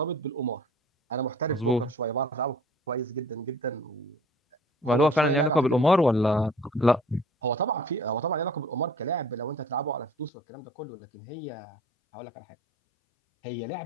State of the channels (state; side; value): drops out; right; at 10.3 s